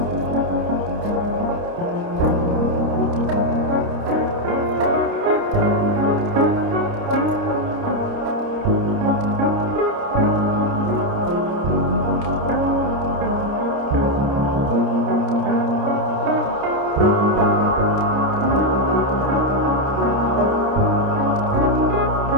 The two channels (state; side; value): late; left; 29 ms